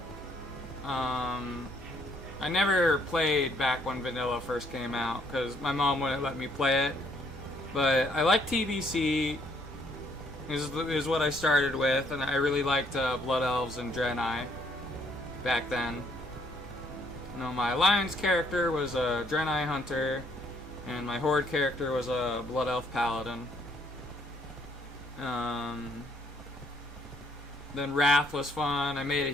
I never played back when Vanilla first came out because my mom wouldn't let me play it. But I like TBC. Is what I started with, and I really liked Blood Elves and Draenei back then. You know, my Alliance character was a Draenei Hunter, and my Horde character was a Blood Elf Paladin. Then Wrath was fun. I made a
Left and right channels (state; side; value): normal; both; correlation 0.67